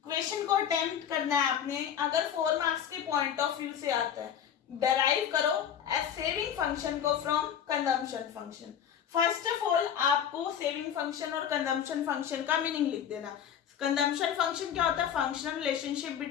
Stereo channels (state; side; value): quieter; right; 9.0 dB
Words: क्वेश्चन को अटेम्प्ट करना है आपने, अगर 4 मार्क्स के पॉइंट ऑफ व्यू से आता है, डराइव करो एज सेविंग फंक्शन को from consumption function. First of all आपको सेविंग फंक्शन और कंजम्पशन फंक्शन का मीनिंग लिख देना। कंजम्पशन फंक्शन क्या होता है, functional relationship